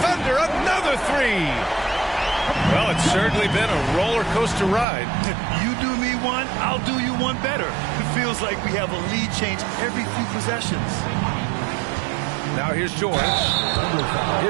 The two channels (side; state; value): left; drops out; at 4.9 s